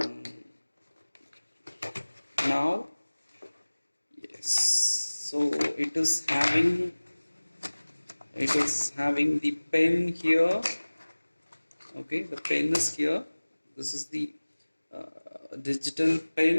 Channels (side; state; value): both; inverted; correlation -1.00